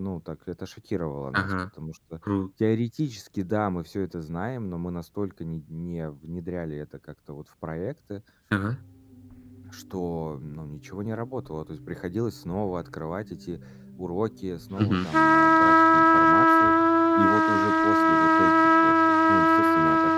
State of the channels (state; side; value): identical; both; correlation 1.00